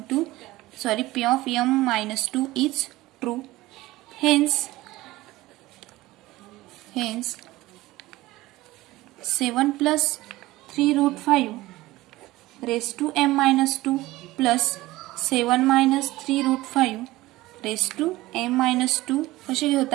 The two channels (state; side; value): quieter; left; 18.2 dB